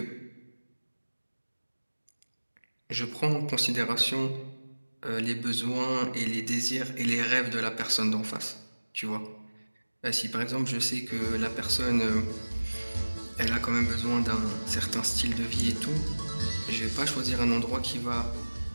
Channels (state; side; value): inverted; both; correlation -1.00